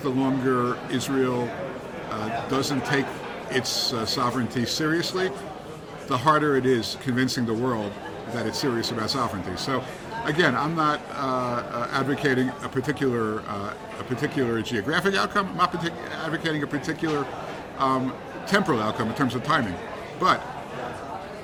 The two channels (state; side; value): identical; both; correlation 1.00